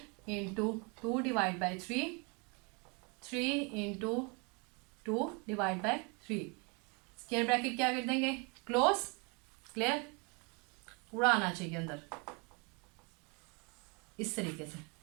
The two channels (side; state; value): left; quieter; 31.9 dB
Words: into 2 divide by 3, 3 into 2 divide by 3। Square bracket क्या कर देंगे? क्लोज। क्लियर? पूरा आना चाहिए अंदर इस तरीके से,